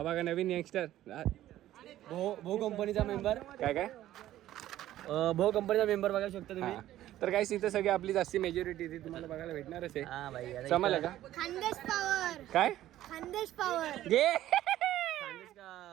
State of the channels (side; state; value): left; quieter; 13.6 dB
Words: बघा नवीन यंगस्टर भो कंपनीचा मेंबर. काय भो कंपनीचा मेंबर बघायला शकता तुम्ही. तर काही इथं सगळी आपली जास्ती मेजॉरिटी ती तुम्हाला बघायला भेटणारच आहे. समजलं का? खानदेश पॉवर. काय खानदेश पॉवर घे.